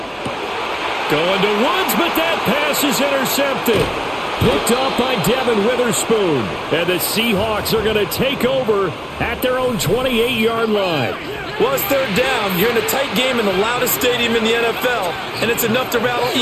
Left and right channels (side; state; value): both; identical; correlation 1.00